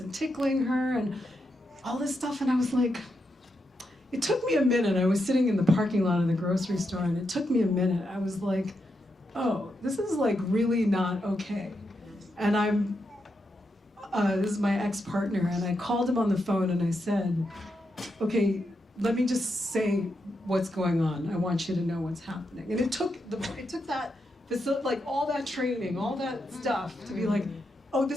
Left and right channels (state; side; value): normal; both; correlation 0.84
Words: tickling her and all this stuff, and I was like, it took me a minute. I was sitting in the parking lot of the grocery store, and it took me a minute. I was like, oh, this is like really not okay. And this is my ex-partner, and I called him on the phone and I said, okay, let me just say what's going on. I want you to know what's happening. And it took that, like all that training, all that stuff to be like, oh,